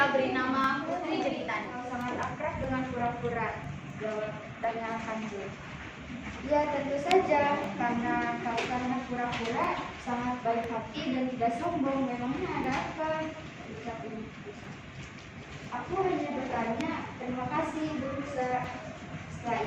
beri nama Putri Jeritan. Sangat akrab dengan kura-kura, jawab tanya Kancil. Ya tentu saja, karena kura-kura sangat baik hati dan tidak sombong. Memangnya ada apa? Ucap Ibu Rusa. Aku hanya bertanya, terima kasih Ibu Rusa. Setelah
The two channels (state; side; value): identical; both; correlation 1.00